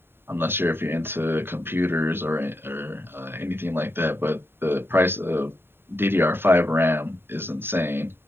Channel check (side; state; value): left; late; 0.11 ms